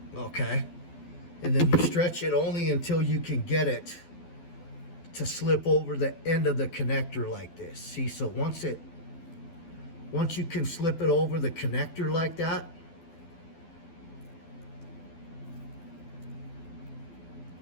Okay. And then you stretch it only until you can get it to slip over the end of the connector like this. See, so once you can slip it over the connector like that,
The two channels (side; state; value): right; late; 12 ms